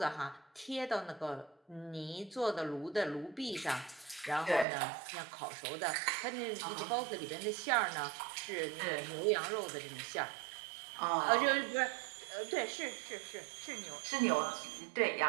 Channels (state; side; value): drops out; left; at 4.7 s